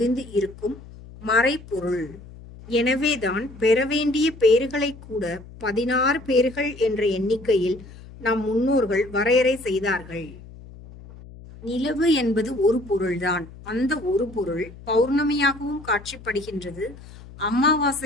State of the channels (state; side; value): noise; left; hum, 18 dB below the sound